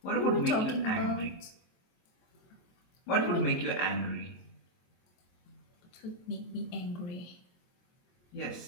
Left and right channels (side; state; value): right; late; 23 ms